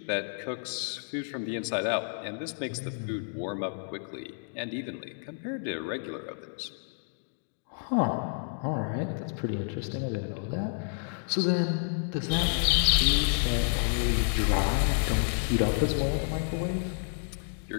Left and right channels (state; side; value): silent; right; digital silence